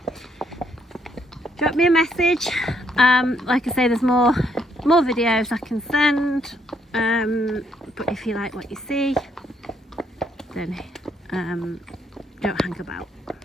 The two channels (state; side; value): normal; both; correlation 0.72